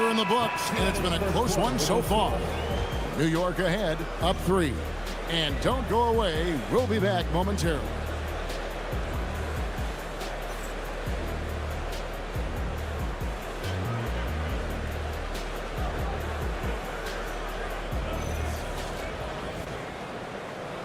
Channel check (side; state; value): both; identical; correlation 1.00